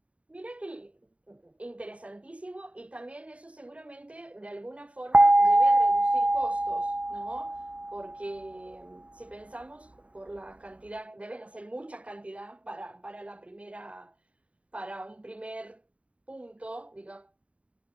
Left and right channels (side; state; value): left; late; 0.065 ms